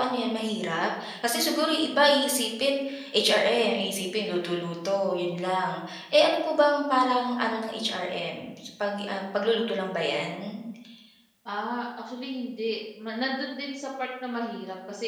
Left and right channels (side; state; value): both; identical; correlation 1.00